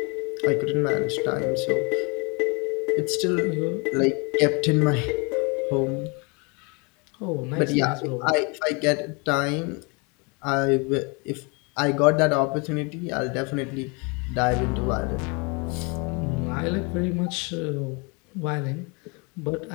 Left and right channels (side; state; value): right; quieter; 31.4 dB